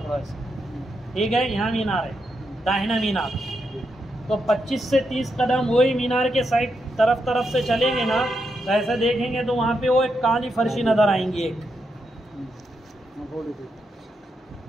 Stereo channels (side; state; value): both; normal; correlation 0.83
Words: ऐसे, ठीक है, यहाँ मीनार है, दाहिना मीनार। तो 25 से 30 कदम वही मीनार के साइड तरफ से चलेंगे ना, तो ऐसा देखेंगे तो वहाँ पे वो एक काली फर्शी नज़र आएंगी एक।